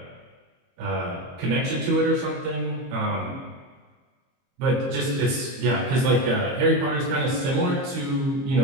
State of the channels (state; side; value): late; left; 22 ms